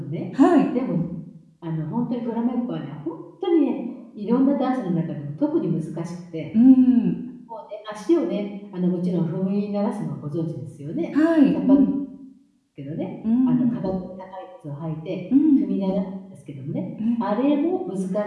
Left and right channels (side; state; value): both; identical; correlation 1.00